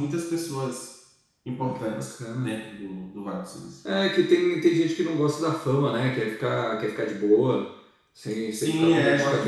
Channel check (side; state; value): both; identical; correlation 1.00